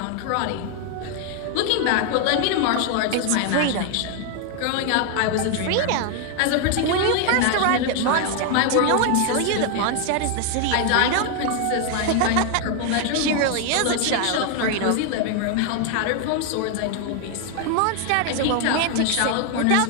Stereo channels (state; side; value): different; both; correlation 0.00